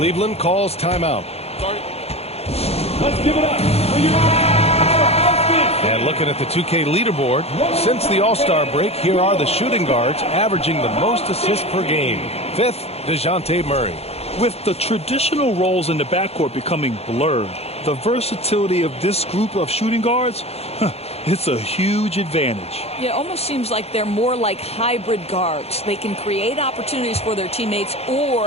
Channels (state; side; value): late; right; 0.30 ms